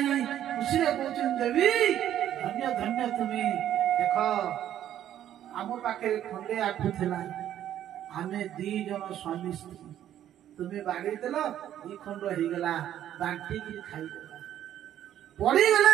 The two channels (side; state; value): left; quieter; 11.3 dB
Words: खुशी रे कहउछन देवी धन्य धन्य तुम्ही देख आम पाखे खंडे आखु थिला आमे दी जन स्वामी स्त्री तुम्हें बाड़ी देल दी खंड हो गला बांटी की खाई देला पड़ी गले